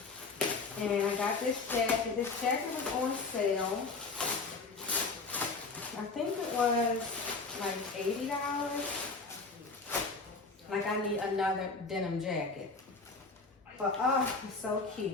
And I got this jacket. This jacket was on sale. I think it was like $80. Like I need another denim jacket. But oh, it's so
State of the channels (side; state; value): right; quieter; 4.0 dB